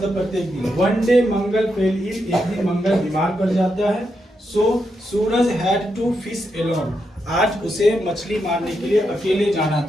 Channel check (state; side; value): normal; both; correlation 0.83